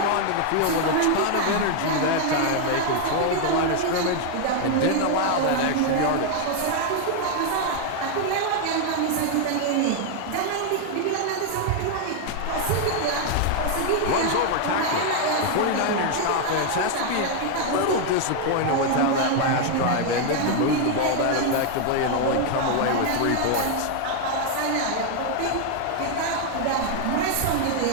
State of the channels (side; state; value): both; different; correlation 0.00